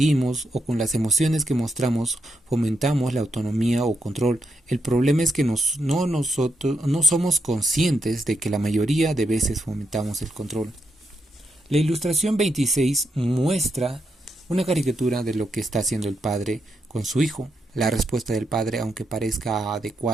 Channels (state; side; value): normal; both; correlation 0.82